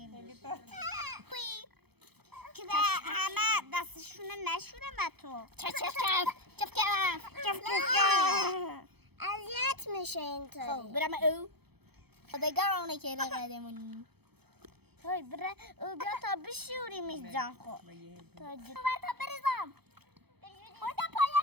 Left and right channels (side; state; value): left; late; 0.98 ms